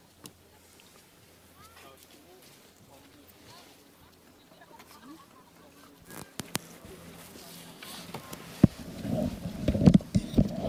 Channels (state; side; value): identical; both; correlation 1.00